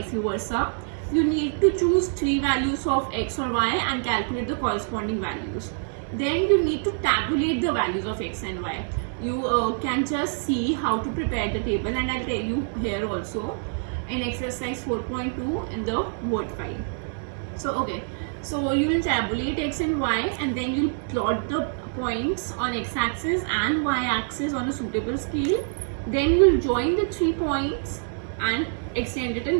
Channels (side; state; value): left; silent; 61 dB below the other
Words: versa. You need to choose 3 values of x or y and calculate the corresponding values. Then you need to tabulate the values of x and y. You can just see how to prepare the table, and I'll tell you here also in exercise 4.2 in the word file. So okay, so you will tabulate x and y, and then you'll plot the points on x-axis and y-axis on a suitable scale. Then you'll join the 3 points and extend it